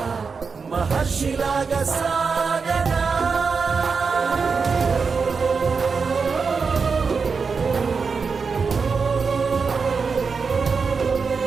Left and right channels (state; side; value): quieter; left; 5.1 dB